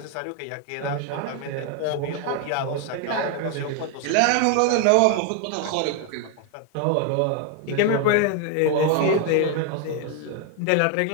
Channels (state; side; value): different; both; correlation 0.01